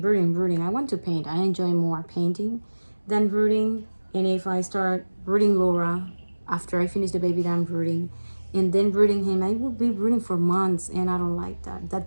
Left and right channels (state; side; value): inverted; both; correlation -1.00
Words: I want to paint. I enjoy more painting than rooting. And if I start rooting Laura after I finish the baby that I'm rooting, and then rooting him, I will be rooting for months, and I don't like that.